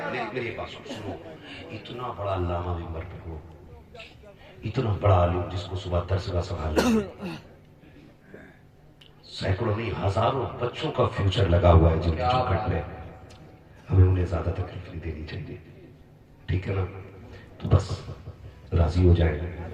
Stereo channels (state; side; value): identical; both; correlation 1.00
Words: میری بات سنو, اتنا بڑا علامہ بھی مر ہو, اتنا بڑا عالم جس کو صبح درس کا سنبھالنا, سینکڑوں نہیں ہزاروں بچوں کا فیوچر لگا ہوا ہے جن کی چوکھٹ میں, ہمیں انہیں زیادہ تکلیف نہیں دینی چاہیے. ٹھیک ہے نا. تو بس راضی ہو جائیں.